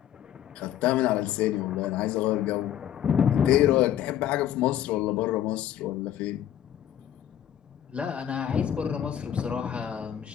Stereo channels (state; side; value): quieter; right; 10.9 dB